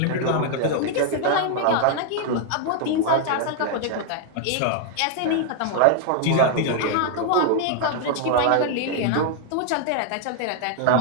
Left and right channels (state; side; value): different; both; correlation 0.00